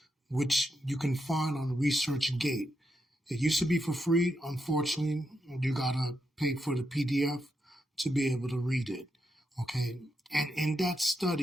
which you can find on ResearchGate. It used to be for free. Unfortunately, you gotta pay for the PDF to be able to read it. Okay. And in that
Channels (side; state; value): both; normal; correlation 0.84